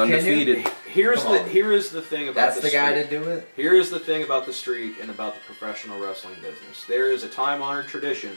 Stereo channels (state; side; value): inverted; both; correlation -1.00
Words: Here is the thing about that's the guy to do it. Here is the thing about the streak and about the professional wrestling business. There is a time-honored tradition